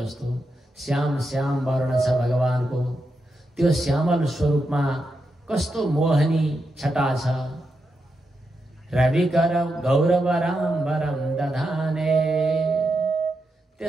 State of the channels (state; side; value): normal; both; correlation 0.86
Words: श्याम श्याम वर्ण छ भगवान को। त्यो श्यामल स्वरूपमा कस्तो मोहनी छटा छ। रविकर गौरवराम्बरम दधाने,